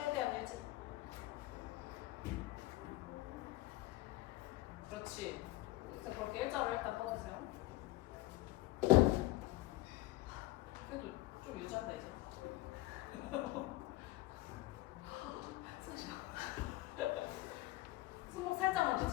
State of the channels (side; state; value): right; quieter; 18.1 dB